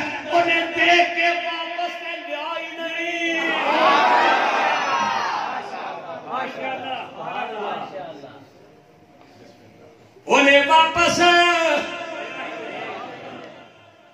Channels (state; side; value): identical; both; correlation 1.00